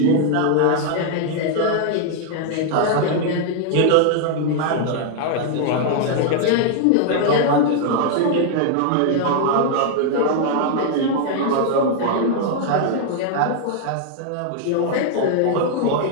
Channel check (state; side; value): different; both; correlation 0.00